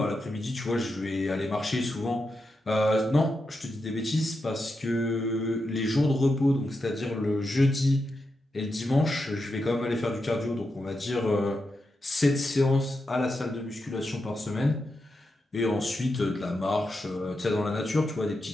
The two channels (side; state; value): both; normal; correlation 0.87